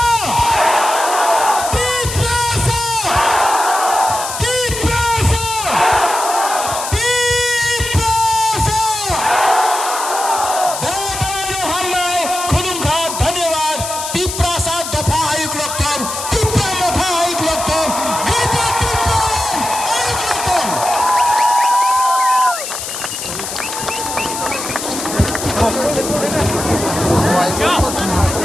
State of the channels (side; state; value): left; noise; hiss, 6 dB below the sound